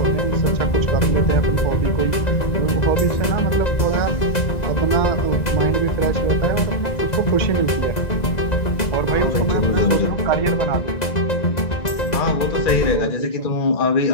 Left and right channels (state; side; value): late; right; 2.0 ms